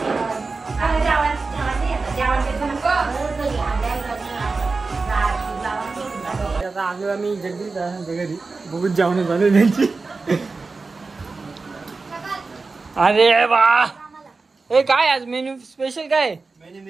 आलो आम्ही जगदीश घरी बघून जेवण झालं त्यांची. अरे वा, हे काय आज मेन्यू स्पेशल काय? मेन्यू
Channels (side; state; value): left; quieter; 4.0 dB